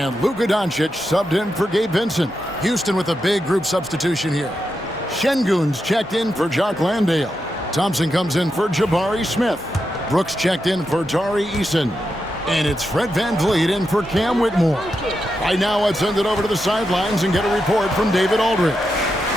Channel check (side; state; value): both; normal; correlation 0.86